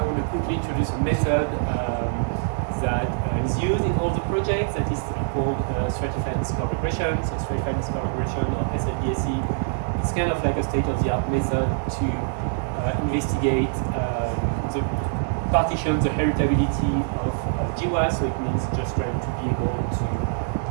want to quickly introduce a method that is used in all the projects that is called stratified discovery regression. So stratified discovery regression, or SLDSE, it's kind of like a state-of-the-art method to investigate the partition the heritability of GWAS, so it means just trying to be able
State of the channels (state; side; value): silent; left; digital silence